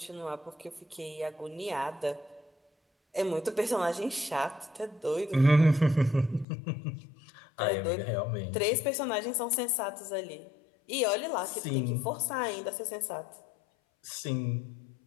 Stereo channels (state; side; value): drops out; right; at 6.5 s